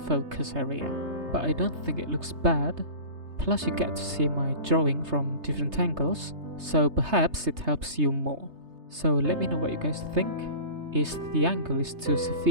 focus area. But I don't think it looks bad, plus you get to see my drawing from different angles, so perhaps it helps you more. So let me know what you guys think. Is the angle too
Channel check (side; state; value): left; late; 3.3 ms